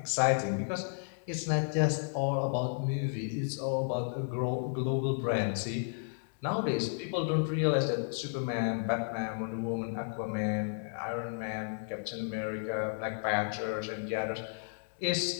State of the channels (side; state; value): right; silent; digital silence